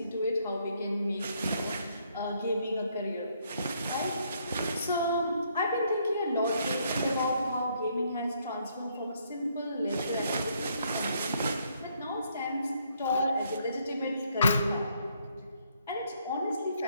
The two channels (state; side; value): inverted; both; correlation -0.71